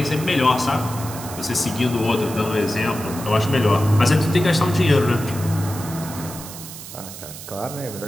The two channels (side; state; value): right; noise; hiss, 13 dB below the sound